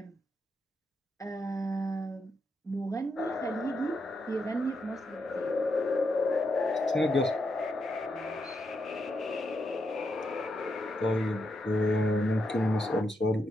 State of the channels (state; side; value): normal; both; correlation 0.82